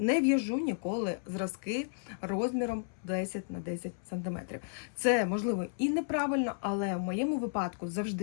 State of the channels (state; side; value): silent; right; 56 dB below the other